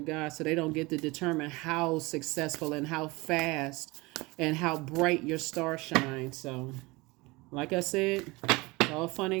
so they don't get to determine how successful and how fast and how bright your star shines. So, like I said, it's all fun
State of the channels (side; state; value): left; quieter; 23.4 dB